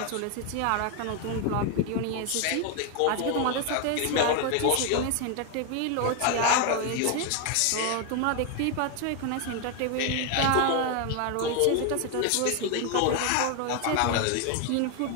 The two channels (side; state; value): both; different; correlation 0.01